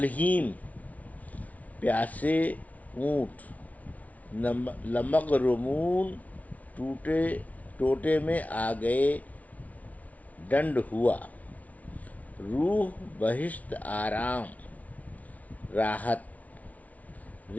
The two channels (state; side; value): late; right; 0.070 ms